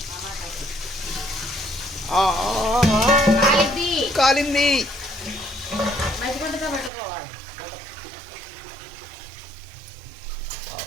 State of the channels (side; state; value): left; drops out; at 6.9 s